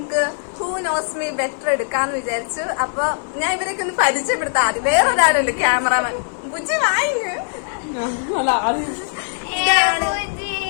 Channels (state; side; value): silent; right; digital silence